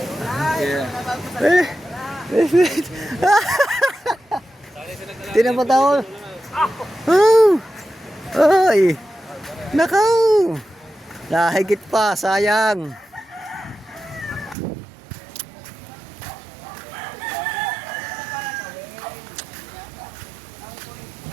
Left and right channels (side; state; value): left; drops out; at 14.6 s